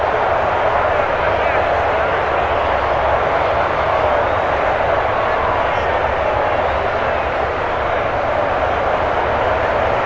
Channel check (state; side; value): identical; both; correlation 1.00